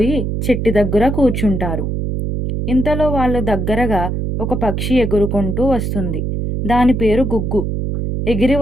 చెట్టు దగ్గర కూర్చుంటారు. ఇంతలో వాళ్ళ దగ్గరగా ఒక పక్షి ఎగురుకుంటూ వస్తుంది. దాని పేరు గుగ్గు. ఎగిరి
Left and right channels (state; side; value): noise; right; hum, 2 dB below the sound